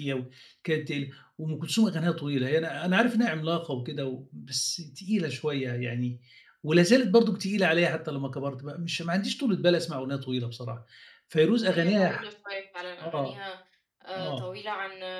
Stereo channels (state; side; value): identical; both; correlation 1.00